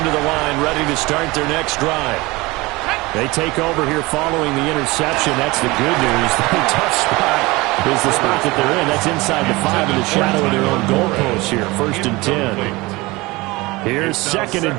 to the line ready to start their next drive. They take over here following the interception. That's the good news. The tough spot is the spot that they're in. That's inside the 5 in the shadow of their own goalpost here. 1st and 10. Here's 2nd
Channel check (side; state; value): left; quieter; 22.3 dB